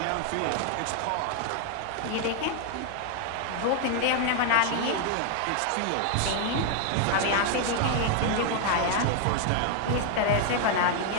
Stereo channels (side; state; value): both; different; correlation 0.00